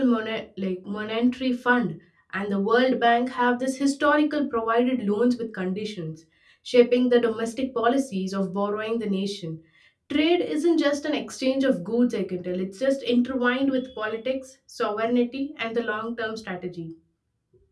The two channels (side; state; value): both; identical; correlation 1.00